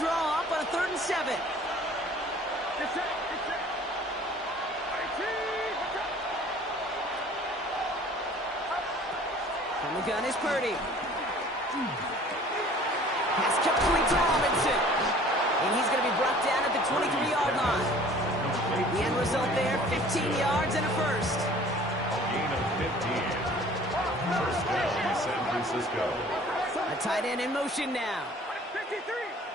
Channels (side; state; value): both; normal; correlation 0.50